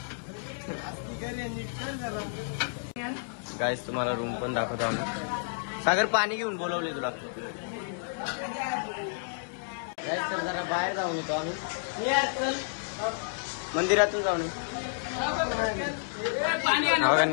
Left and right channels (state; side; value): silent; right; digital silence